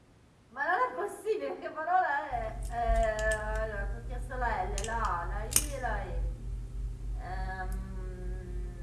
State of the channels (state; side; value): identical; both; correlation 1.00